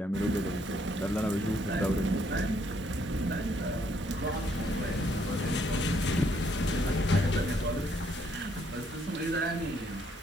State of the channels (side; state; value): both; normal; correlation 0.70